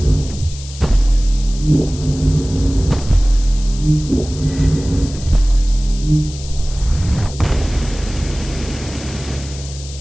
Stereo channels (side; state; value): left; noise; hiss, 15 dB below the sound